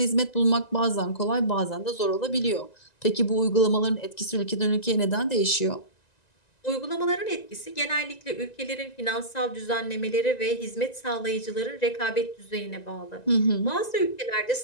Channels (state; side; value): late; right; 1.9 ms